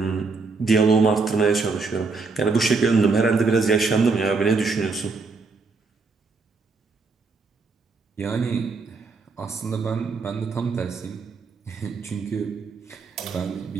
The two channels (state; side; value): quieter; left; 4.2 dB